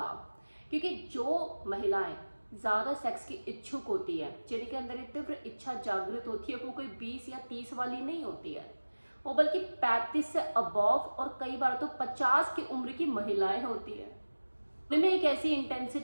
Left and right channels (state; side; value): inverted; both; correlation -1.00